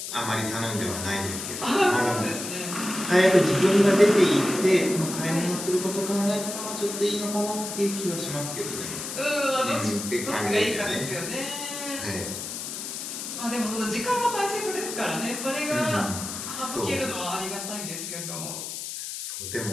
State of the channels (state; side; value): noise; left; hiss, 7 dB below the sound